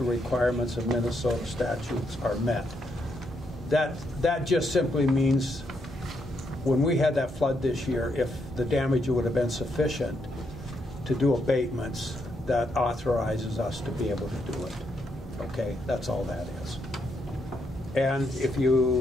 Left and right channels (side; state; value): both; normal; correlation 0.78